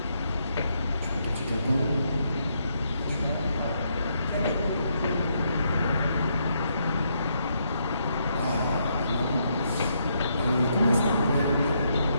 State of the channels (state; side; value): inverted; both; correlation -0.77